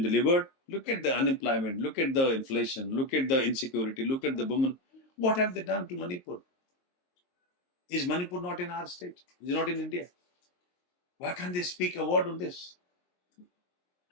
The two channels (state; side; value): late; right; 22 ms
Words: Look at the unemployment, look at the inflation, look at the insecurity, look at the women. What have they done to Manipur? Is Manipur not in our state? Is it not in India? Why can't they speak a word on this?